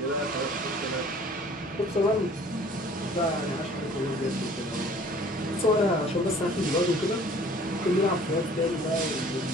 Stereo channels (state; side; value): normal; both; correlation 0.51